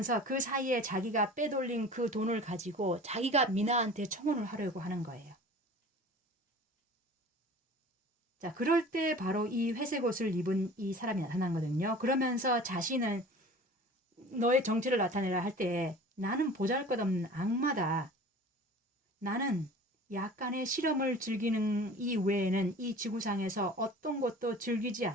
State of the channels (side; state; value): both; normal; correlation 0.42